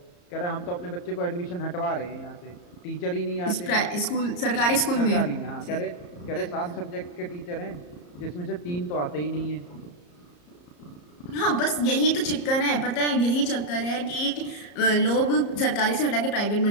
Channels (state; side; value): late; right; 34 ms